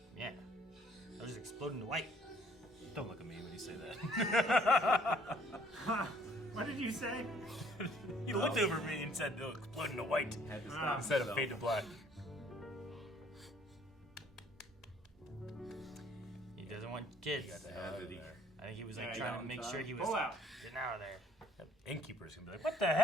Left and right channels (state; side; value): normal; both; correlation 0.60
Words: Yeah. I was just exploding to white. Don't look at me when you say that. What did you say? He looked over me and said, "No, exploding to white." Had to stop Instead of himself. fade to black. He doesn't want kids. Got the hell out of there. I think he was like Yeah, trying got to make him, sure son. he was Pull out. getting out of there. That innkeeper's gonna be like, "What the